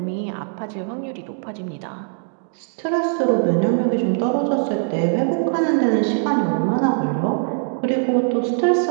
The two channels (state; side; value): silent; left; digital silence